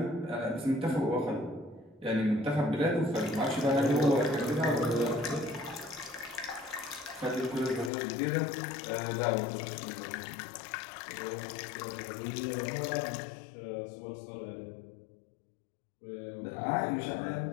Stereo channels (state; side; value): drops out; right; at 7.9 s